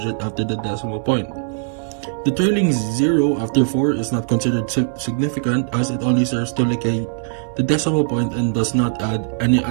after the decimal point. The trailing 0 after 4 is not considered significant, as it only serves to locate the decimal point and does not add any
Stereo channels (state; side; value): silent; left; 63 dB below the other